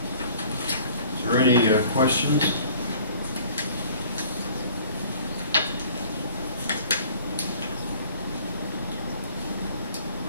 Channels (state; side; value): inverted; both; correlation -0.51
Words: Is there any questions?